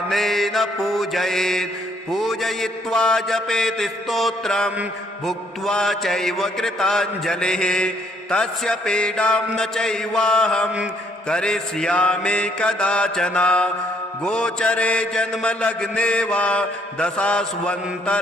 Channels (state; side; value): normal; both; correlation 0.68